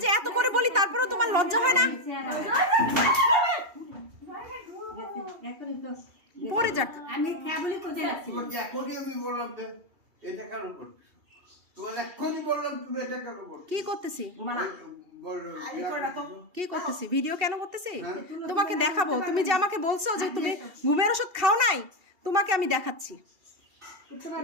যে এত করে বলি তারপরেও তোমার লজ্জা হয় না? পড়ে যাক। আমি খেয়ে বলি কোথায় রাখছি? আমি বললাম যে এটা কেন করছিস? তোমার এক্ষুনি বললাম তুমি এটা কেন করছো? কি করতেছি? বললো কি করতেছি? ভিডিও কেন করতেছি? তোমাকে দেখাবো। তুমি যে আমাকে বলছো যে তুমি ঘুমের ওষুধ খাও নাই, তোমাকে আমি দেখাচ্ছি।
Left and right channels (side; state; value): left; late; 2.7 ms